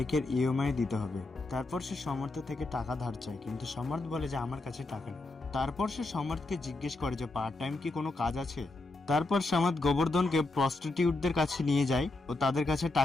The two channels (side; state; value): right; quieter; 3.1 dB